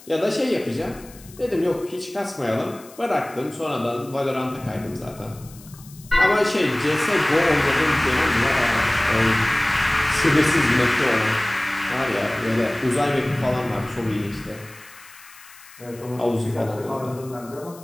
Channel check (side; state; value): left; noise; hiss, 22 dB below the sound